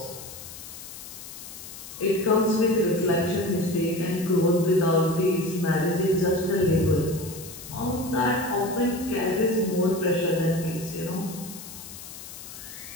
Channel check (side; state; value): left; noise; hiss, 13 dB below the sound